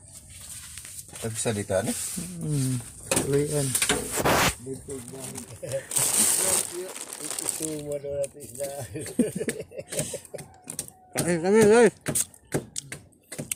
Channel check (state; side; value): identical; both; correlation 1.00